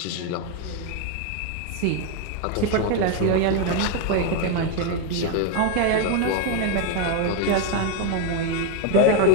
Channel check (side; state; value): both; different; correlation 0.02